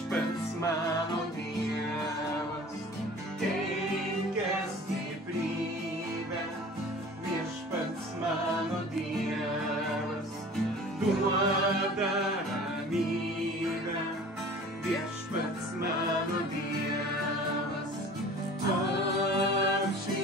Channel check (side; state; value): both; normal; correlation 0.44